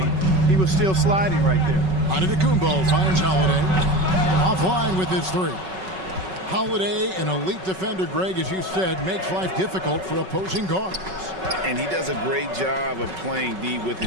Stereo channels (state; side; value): late; left; 5.3 ms